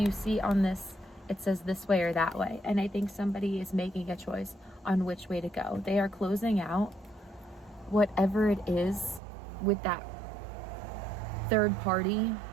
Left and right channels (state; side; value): drops out; left; at 9.2 s